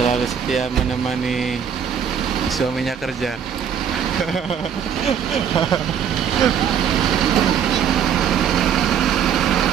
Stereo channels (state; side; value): quieter; left; 8.1 dB